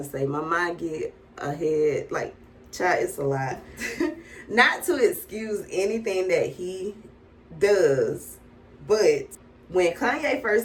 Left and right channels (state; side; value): identical; both; correlation 1.00